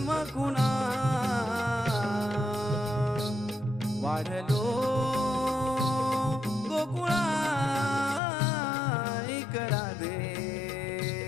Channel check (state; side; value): drops out; right; at 8.2 s